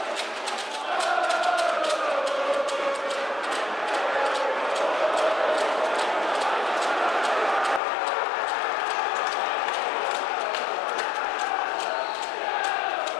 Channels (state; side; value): drops out; right; at 7.8 s